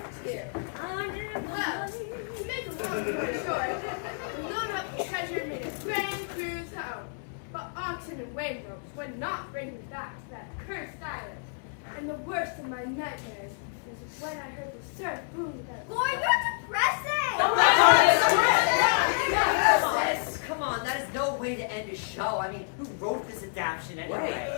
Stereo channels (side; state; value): right; silent; 58 dB below the other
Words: to you. Well, to make a long story short, we loaded up the treasure and made a grand cruise home. But oxen and wave ropes would not bring me back to that cursed island. And the worst of my nightmares was when I heard the surf boom without. Boy, you're depressing! Come on, that is no way to end a show. I mean, who wrote this adaptation anyway?